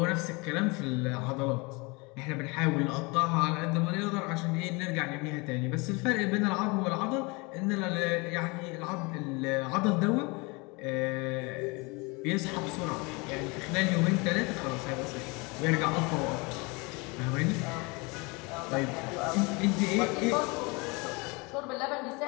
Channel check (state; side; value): quieter; right; 27.7 dB